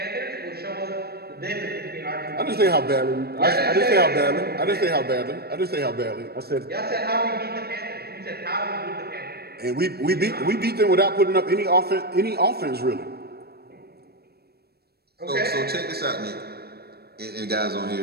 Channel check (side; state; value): left; late; 0.46 ms